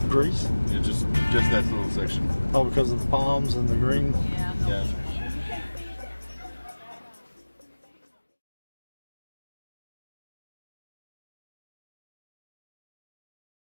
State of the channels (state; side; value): inverted; both; correlation -1.00